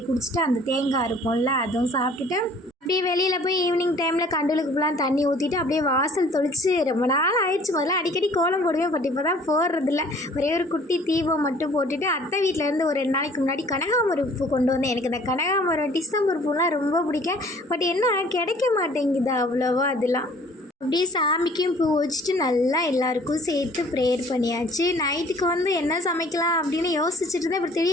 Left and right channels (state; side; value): normal; both; correlation 0.54